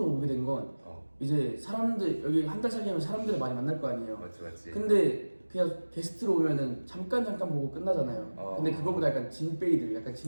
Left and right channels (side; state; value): both; inverted; correlation -1.00